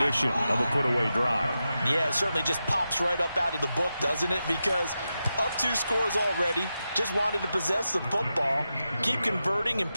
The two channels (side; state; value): both; inverted; correlation -0.90